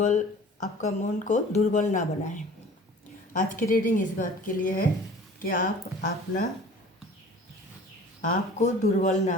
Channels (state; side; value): normal; both; correlation 0.46